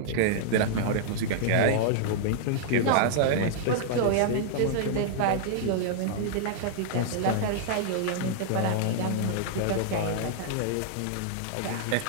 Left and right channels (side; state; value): both; different; correlation -0.01